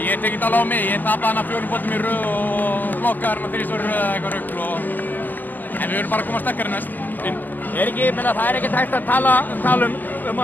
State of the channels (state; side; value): late; right; 0.086 ms